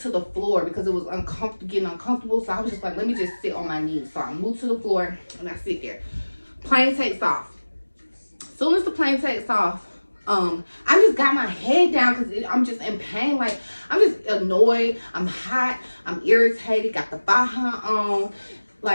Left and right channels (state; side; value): inverted; both; correlation -1.00